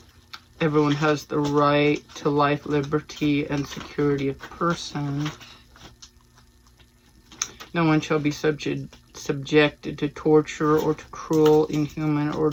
Everyone has the right to life, liberty, and security of person. No one shall be subjected to torture or to cruel, inhuman, or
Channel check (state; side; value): identical; both; correlation 1.00